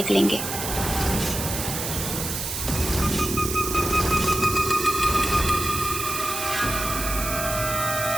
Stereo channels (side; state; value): right; noise; hiss, 4 dB below the sound